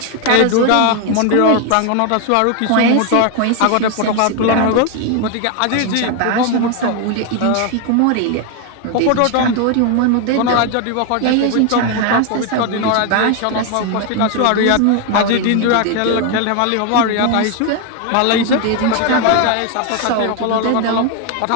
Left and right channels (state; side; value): different; both; correlation 0.01